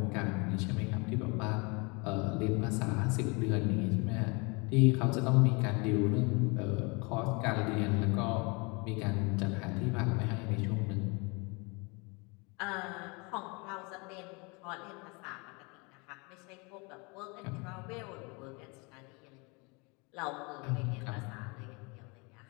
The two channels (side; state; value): right; quieter; 29.4 dB